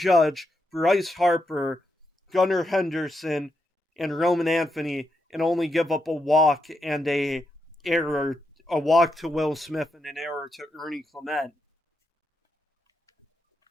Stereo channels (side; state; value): both; normal; correlation 0.83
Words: Bryce Harper, Gunnar Henderson, and Roman Anthony, and only give up a walk and a walk to Will Smith and an error to Ernie Clement.